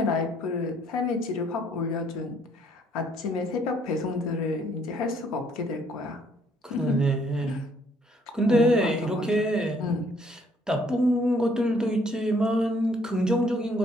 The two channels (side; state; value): both; normal; correlation 0.64